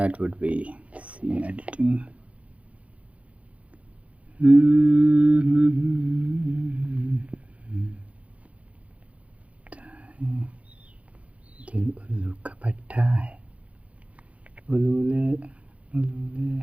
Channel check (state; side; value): late; left; 0.065 ms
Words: would be scene editing. दिल उल्लू का पट्टा है, उल्लू उल्लू